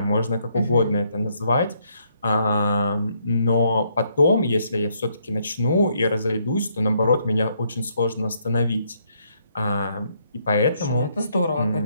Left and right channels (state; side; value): inverted; both; correlation -0.72